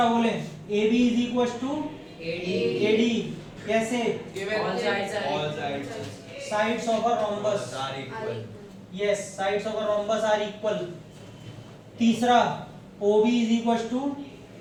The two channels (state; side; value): identical; both; correlation 1.00